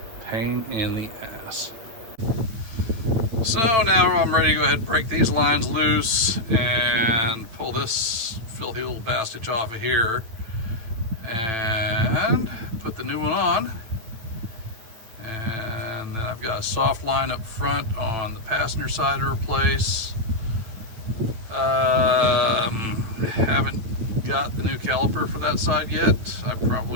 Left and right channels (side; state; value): left; late; 8.9 ms